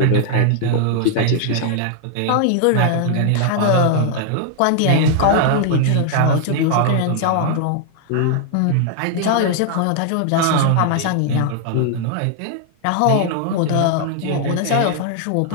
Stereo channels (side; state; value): both; different; correlation 0.00